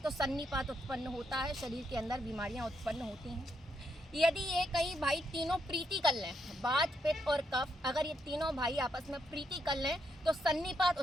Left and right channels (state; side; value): normal; both; correlation 0.78